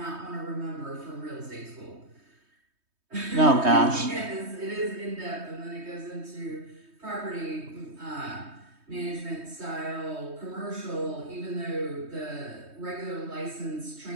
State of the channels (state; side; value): late; left; 3.2 ms